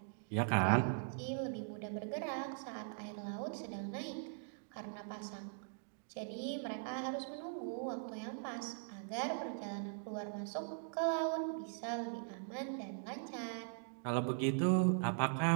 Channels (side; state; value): left; silent; digital silence